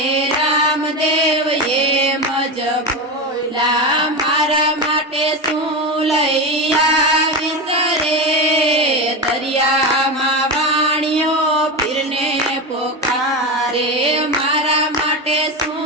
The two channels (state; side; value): normal; both; correlation 0.18